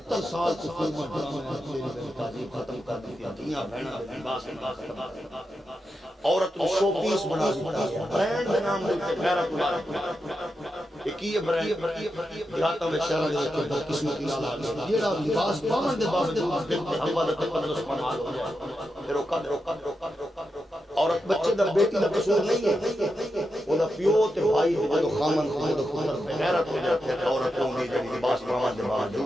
سال سے فرما ڈرامہ ختم کر دی دنیا بہنا باس عورت کو شو پیس بنا دیا برانڈ کے نام دے غیرت اللہ ایک یہ برانڈ دیہاتوں میں شہر دے کے قسمتی نال جیڑا لباس پاون دے باوجود ہوا دا تقدس پناہ ہو جائے پھر عورت بچے دا بیٹی دا قصور نہیں ہے وہ دا پیو تے بھائی دے خامن خود خود غیرت ہو جاتے ہیں عورتوں دی جڑی لباس پاون دے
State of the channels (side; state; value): both; normal; correlation 0.87